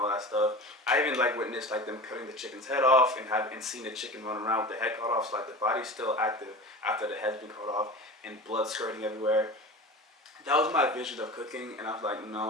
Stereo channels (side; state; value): both; normal; correlation 0.33